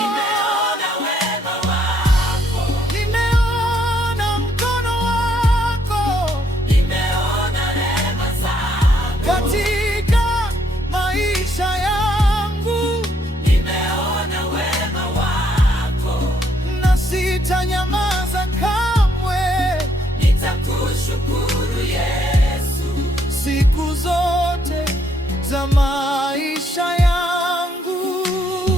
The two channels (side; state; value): both; normal; correlation 0.71